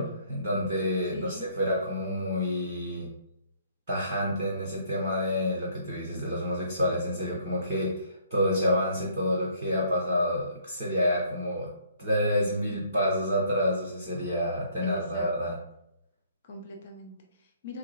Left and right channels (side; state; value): both; inverted; correlation -0.62